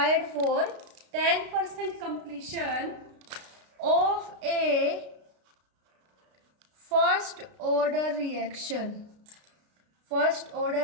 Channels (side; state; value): left; late; 33 ms